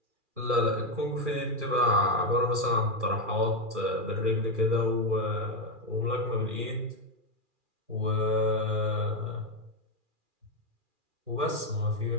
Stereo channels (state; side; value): late; left; 2.4 ms